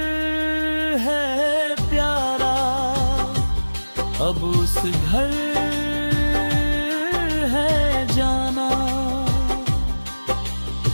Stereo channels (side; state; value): both; inverted; correlation -1.00